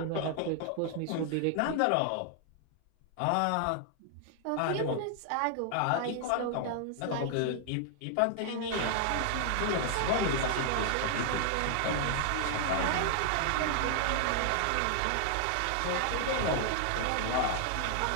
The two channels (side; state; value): both; different; correlation 0.00